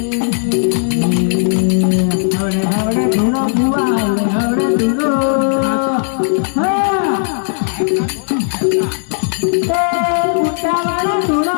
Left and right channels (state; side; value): silent; right; digital silence